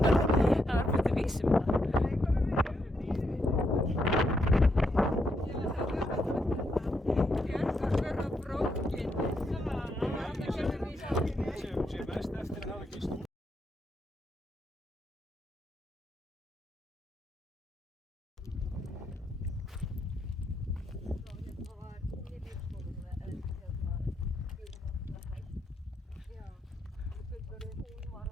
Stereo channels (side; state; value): both; normal; correlation 0.79